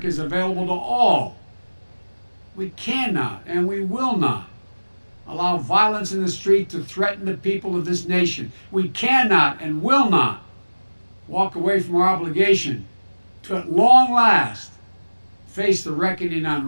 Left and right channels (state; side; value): inverted; both; correlation -1.00